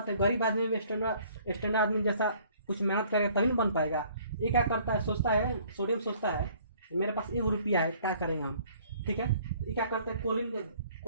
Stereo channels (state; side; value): inverted; both; correlation -0.58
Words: है गरीब आदमी में स्टैंडर्ड आदमी जैसा कुछ मेहनत करेगा तभी बन पाएगा। ये क्या करता है, सोचता है, सोडियम सोचता है मेरे पास 1 रुपया है, क्या करेंगे हम, ठीक है। ये क्या करते हैं,